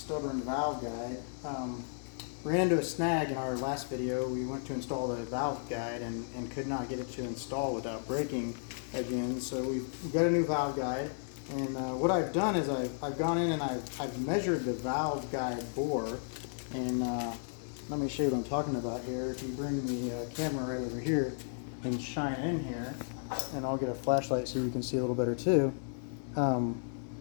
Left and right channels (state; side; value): silent; right; 55 dB below the other